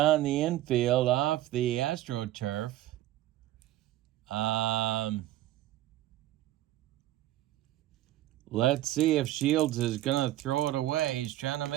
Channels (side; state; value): left; quieter; 14.7 dB